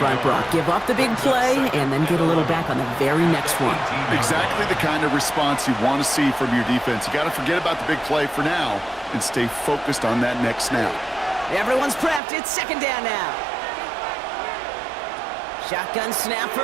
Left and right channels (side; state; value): left; drops out; at 12.2 s